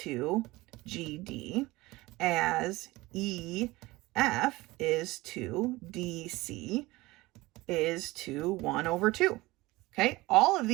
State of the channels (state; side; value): quieter; left; 20.3 dB